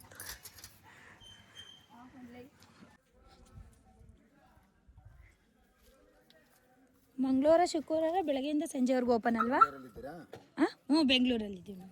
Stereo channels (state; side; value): identical; both; correlation 1.00